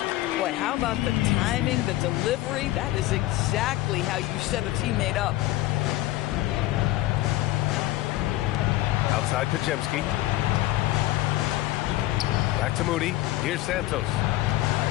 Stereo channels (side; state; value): right; quieter; 16.6 dB